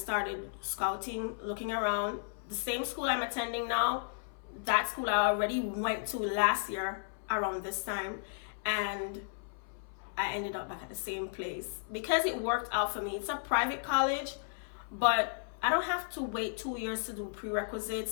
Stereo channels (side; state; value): right; silent; 55 dB below the other